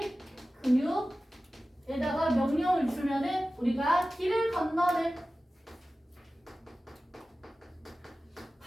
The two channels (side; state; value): both; normal; correlation 0.95